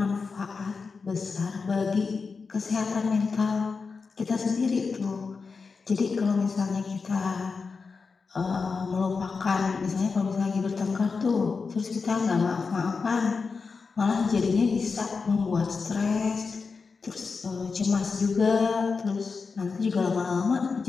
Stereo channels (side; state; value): right; quieter; 4.8 dB